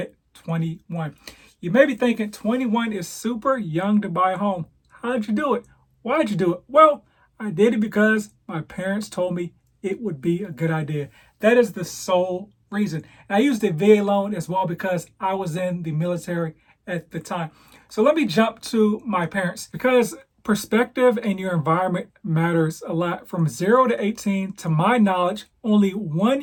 21. You may be thinking 21 is super young to buy a home. How'd you do it? Why'd you do it? Well, I did it because my parents told me it would be a good idea. That is the sole reason. And I used a VA loan as well because I was in the military at the time. So let me jump to my parents because perspective and your environment matters a lot. From 0 to 18, to my knowledge, only 1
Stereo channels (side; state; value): both; identical; correlation 1.00